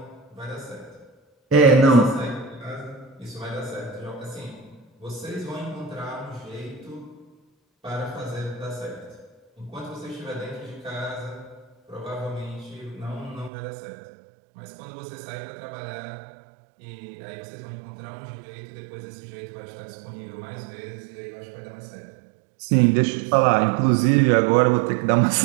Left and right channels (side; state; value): left; drops out; at 13.5 s